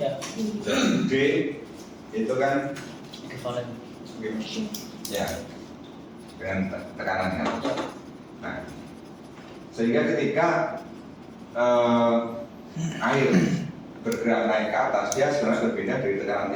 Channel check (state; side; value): identical; both; correlation 1.00